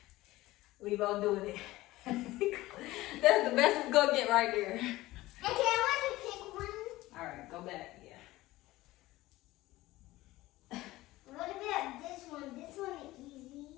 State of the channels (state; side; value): quieter; right; 17.8 dB